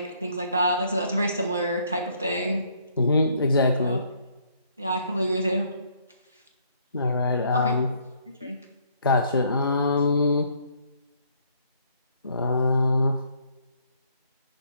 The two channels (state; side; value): inverted; both; correlation -0.66